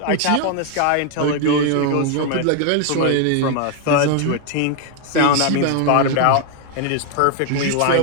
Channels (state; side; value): different; both; correlation 0.00